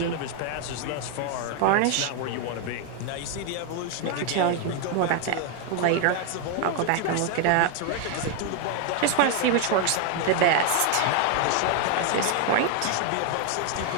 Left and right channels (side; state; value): both; different; correlation 0.01